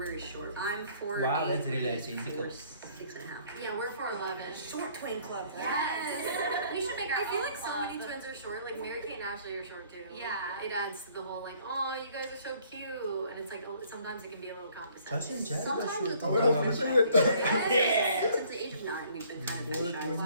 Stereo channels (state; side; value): inverted; both; correlation -0.59